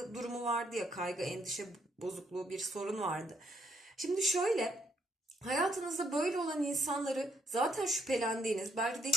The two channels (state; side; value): normal; both; correlation 0.72